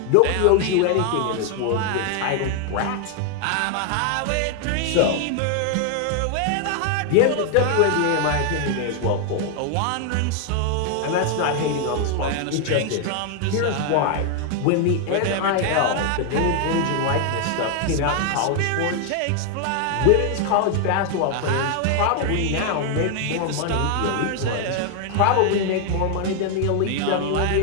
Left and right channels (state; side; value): different; both; correlation 0.01